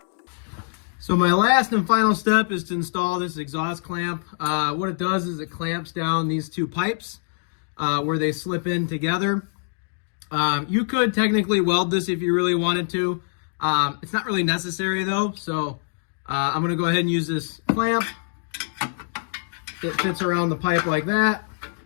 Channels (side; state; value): right; silent; digital silence